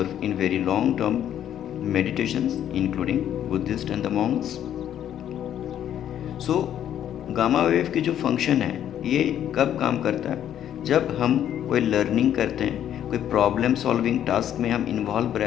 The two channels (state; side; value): quieter; right; 10.5 dB